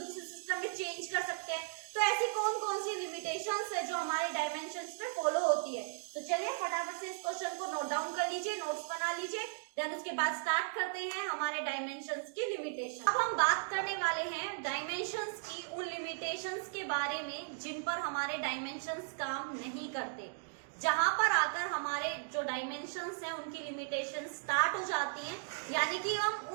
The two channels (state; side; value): silent; left; digital silence